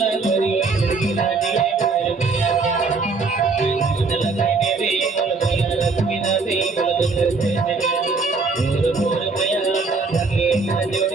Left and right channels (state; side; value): quieter; left; 4.2 dB